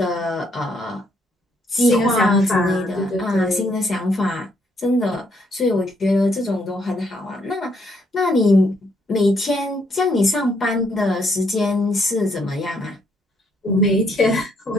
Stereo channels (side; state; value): both; normal; correlation 0.71